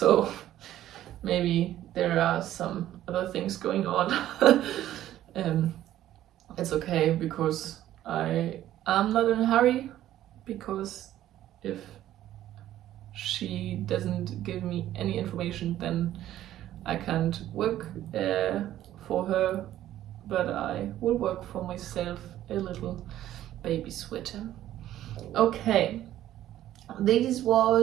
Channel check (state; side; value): quieter; left; 12.9 dB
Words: maybe there are some other things going on. It's okay because I'm not in a hurry, because if she doesn't give me any information then I can't work for her, but I will work for myself a little baby sweater. Okay, this